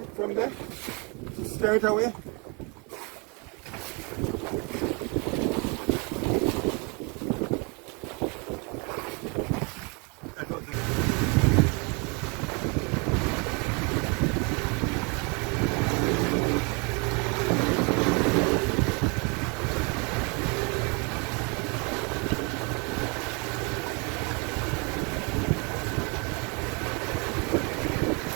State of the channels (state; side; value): quieter; left; 32.3 dB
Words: there? To steer it away?